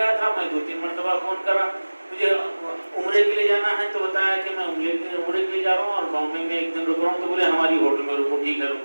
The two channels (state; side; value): inverted; both; correlation -1.00